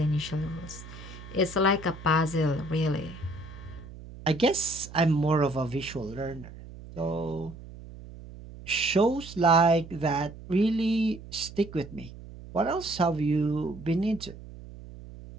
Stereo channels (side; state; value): right; noise; hum, 15 dB below the sound